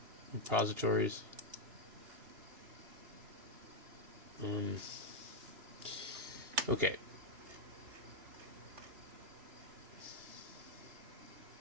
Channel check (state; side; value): late; left; 2.8 ms